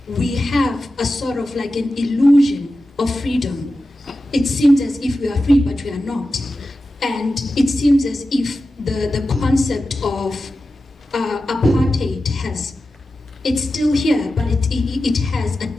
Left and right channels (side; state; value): both; normal; correlation 0.93